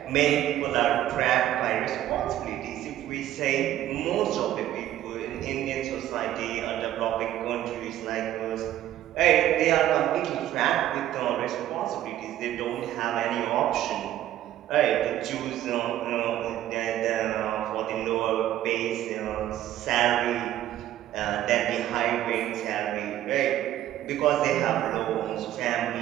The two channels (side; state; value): left; quieter; 12.8 dB